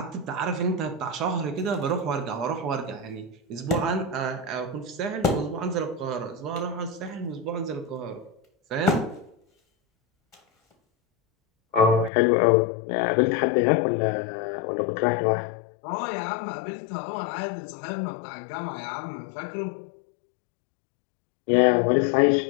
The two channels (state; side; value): drops out; right; at 12.1 s